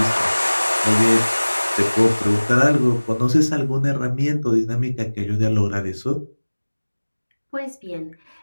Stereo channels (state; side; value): inverted; both; correlation -1.00